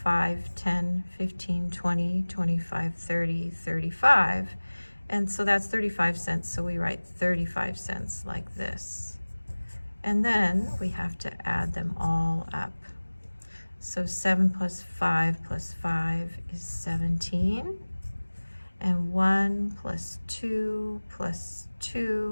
10, 15, 20, 25, 30, 35. And so that's 35 cents, so we write 35 cents like this. And then we have to add them all up. So 7 plus 5 plus 5 is 17. And 1 plus 2 plus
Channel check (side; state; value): both; inverted; correlation -1.00